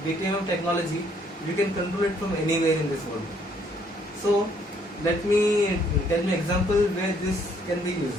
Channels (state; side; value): normal; both; correlation 0.66